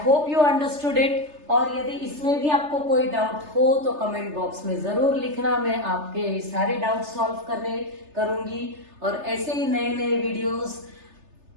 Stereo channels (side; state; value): left; late; 3.3 ms